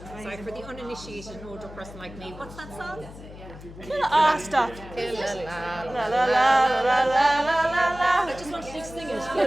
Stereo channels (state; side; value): noise; left; hum, 16 dB below the sound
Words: Sorry, for the uninitiated older person like me, what's that song? Killa, stop. Killa, La la la la la la la la. I just wanted to sing